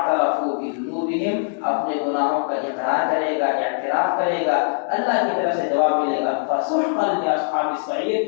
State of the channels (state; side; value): silent; right; 64 dB below the other